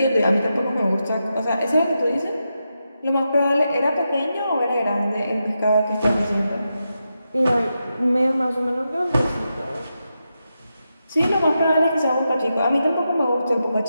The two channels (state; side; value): inverted; both; correlation -0.87